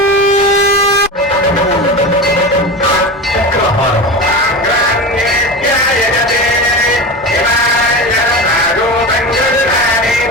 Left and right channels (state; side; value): normal; both; correlation 0.25